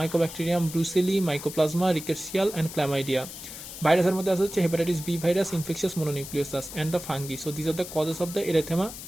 brucella, mycoplasma, rickettsial and chlamydia. ভাইরাসের মধ্যে আছে হচ্ছে hepatitis B virus, infectious mononucleosis and the fungi. So this are the causes of the erythema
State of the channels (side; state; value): left; noise; hiss, 11 dB below the sound